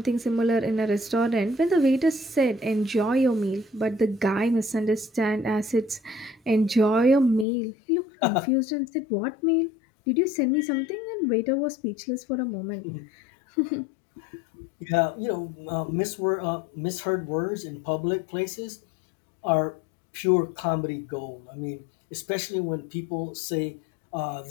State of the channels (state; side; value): drops out; right; at 7.5 s